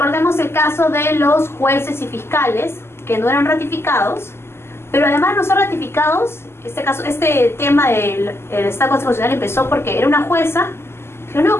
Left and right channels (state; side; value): late; right; 0.12 ms